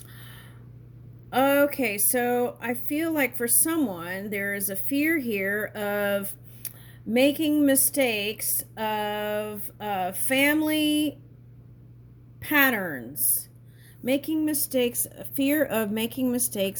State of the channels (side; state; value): both; identical; correlation 1.00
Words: Okay, so I feel like for someone, there is a fear here of making mistakes of family patterns. Making mistakes, fear of making